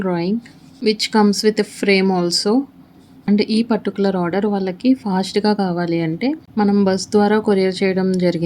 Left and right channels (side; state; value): both; identical; correlation 1.00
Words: which comes with frame also. And ఈ పర్టిక్యులర్ ఆర్డర్ వాళ్ళకి ఫాస్ట్‌గా కావాలి అంటే మనం బస్ ద్వారా కొరియర్ చేయడం